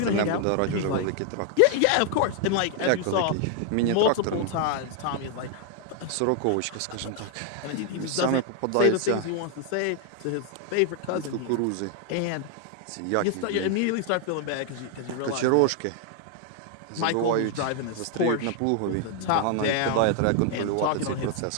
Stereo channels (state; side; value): different; both; correlation 0.00